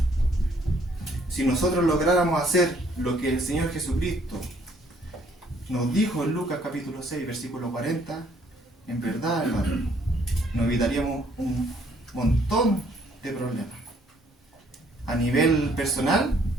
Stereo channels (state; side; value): normal; both; correlation 0.65